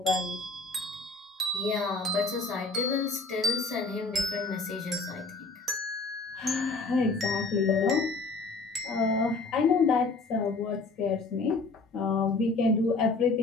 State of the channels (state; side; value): quieter; right; 3.7 dB